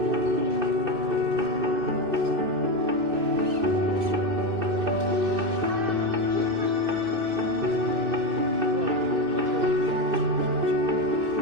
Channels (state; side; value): late; left; 2.6 ms